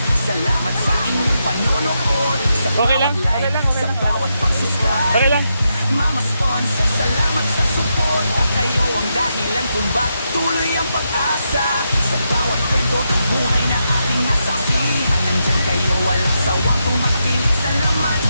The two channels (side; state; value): both; inverted; correlation -0.83